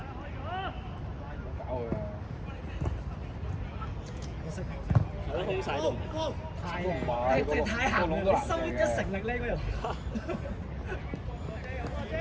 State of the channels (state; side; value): identical; both; correlation 1.00